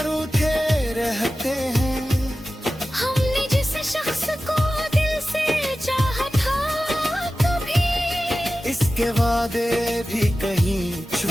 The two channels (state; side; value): normal; both; correlation 0.95